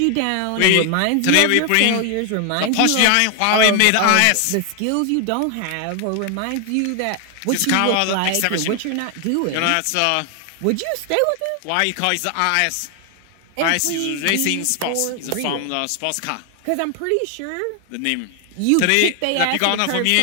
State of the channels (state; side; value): different; both; correlation 0.00